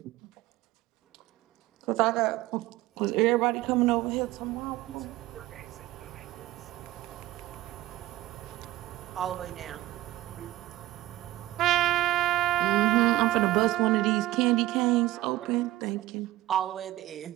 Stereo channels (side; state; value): left; quieter; 16.7 dB